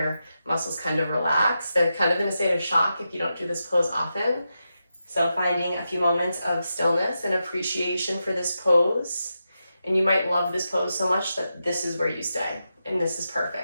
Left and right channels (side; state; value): both; inverted; correlation -0.88